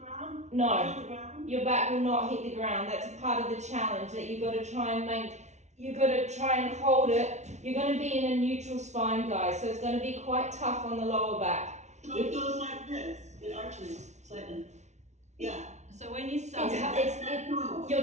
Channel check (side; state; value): left; late; 0.33 ms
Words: No, On the ground? your back will not hit the ground. That's a part of the challenge that you've got to try and you've got to try and hold it. You're going to be in a neutral spine, guys, so it's going to be quite tough on the lower back. So it goes like this, it arches slightly. Yeah. So when you suck,